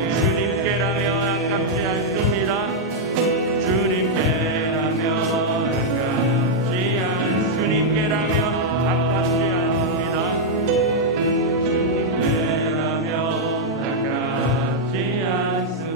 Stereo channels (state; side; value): normal; both; correlation -0.03